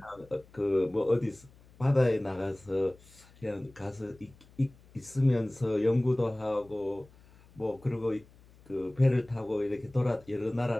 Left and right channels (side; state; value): left; noise; hum, 26 dB below the sound